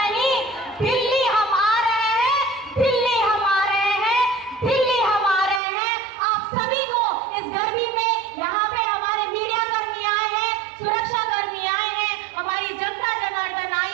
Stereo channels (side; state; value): left; drops out; at 5.6 s